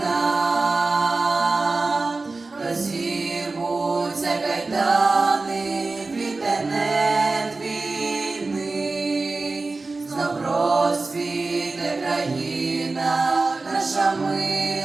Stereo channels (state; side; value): quieter; left; 3.6 dB